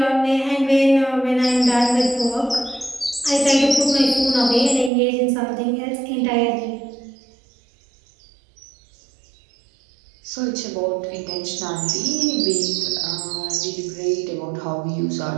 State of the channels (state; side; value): drops out; left; at 4.9 s